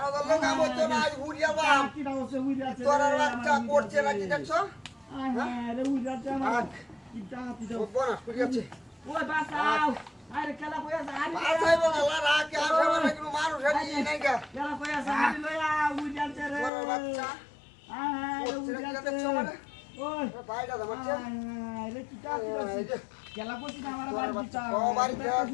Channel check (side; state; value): right; drops out; at 16.7 s